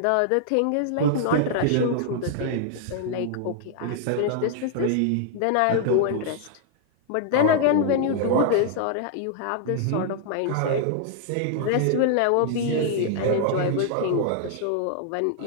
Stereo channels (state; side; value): different; both; correlation -0.01